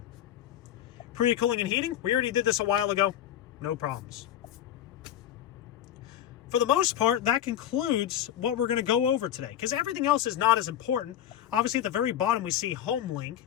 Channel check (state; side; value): quieter; right; 11.2 dB